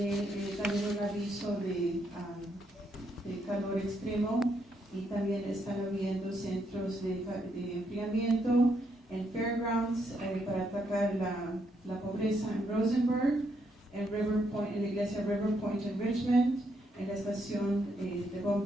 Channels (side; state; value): both; normal; correlation 0.76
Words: también un aviso de calor extremo y también están habiendo centros de enfriamiento en Fairgrounds para atacar la pobreza en Rosenberg, en River Point, en la iglesia River Point en Richmond, en la estación de